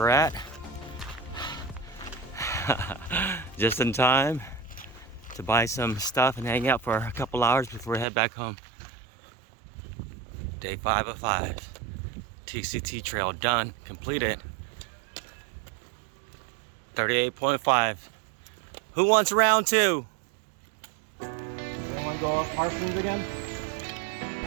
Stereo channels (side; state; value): left; drops out; at 8.1 s